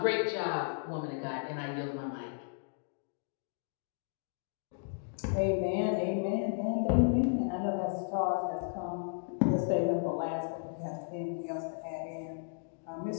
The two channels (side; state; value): right; silent; digital silence